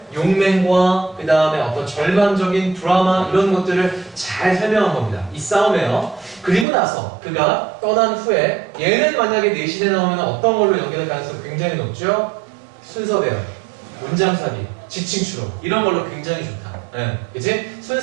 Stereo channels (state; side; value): drops out; left; at 6.7 s